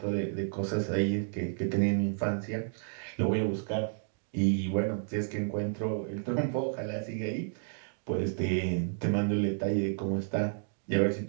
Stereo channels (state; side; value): silent; left; digital silence